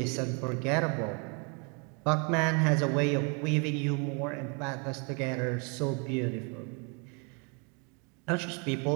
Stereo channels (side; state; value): left; quieter; 35.0 dB